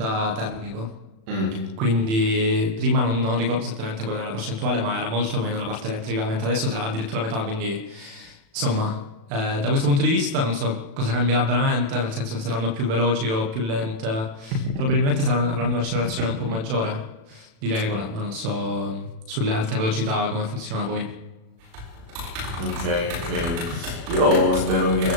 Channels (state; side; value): late; left; 36 ms